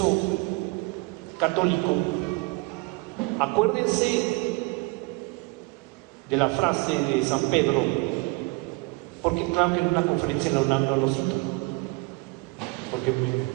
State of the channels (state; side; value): quieter; left; 26.6 dB